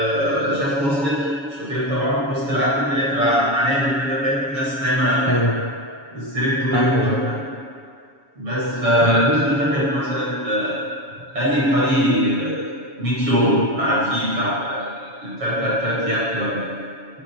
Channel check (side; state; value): left; late; 7.2 ms